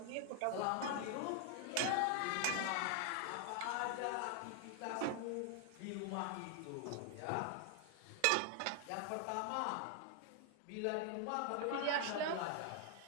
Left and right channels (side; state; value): both; different; correlation 0.00